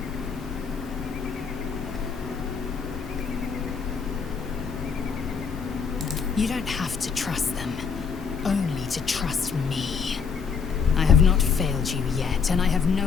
You don't have to trust them, only to trust me. I have not failed you yet, and I have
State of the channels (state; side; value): quieter; right; 6.0 dB